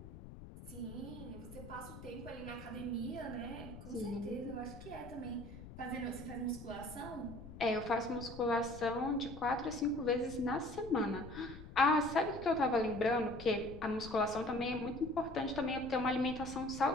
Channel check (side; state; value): left; noise; rumble, 13 dB below the sound